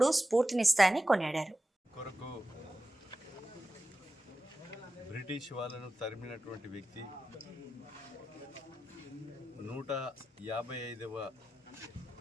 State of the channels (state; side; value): normal; both; correlation 0.92